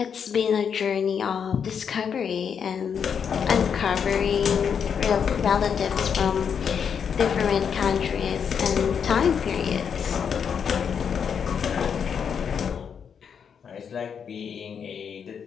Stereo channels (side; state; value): right; quieter; 7.2 dB